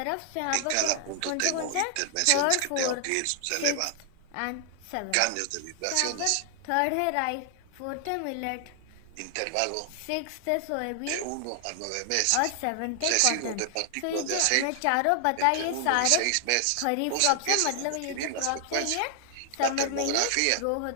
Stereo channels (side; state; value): both; different; correlation 0.00